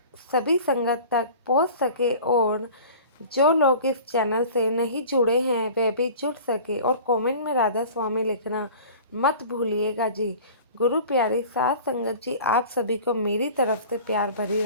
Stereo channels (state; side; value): inverted; both; correlation -0.42